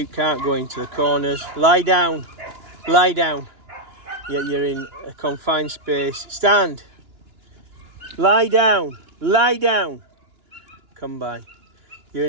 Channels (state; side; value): late; left; 2.9 ms